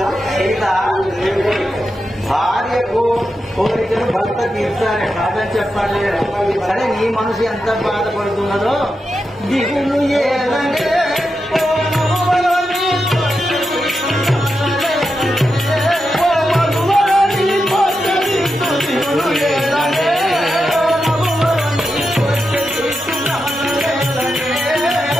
భార్యకు కోరికలు భర్త తీర్చాలి కాదని చెప్పాలి. సరే నీ మనసు ఎంత బాధపడుతున్నదో దిగులు ఏదంటే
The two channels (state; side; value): normal; both; correlation 0.88